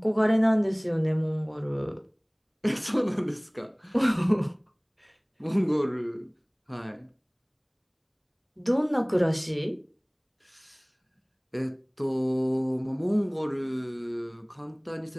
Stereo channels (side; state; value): both; identical; correlation 1.00